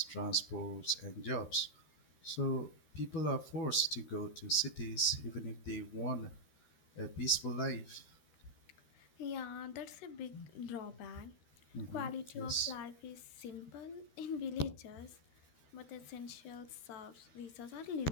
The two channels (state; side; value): late; right; 13 ms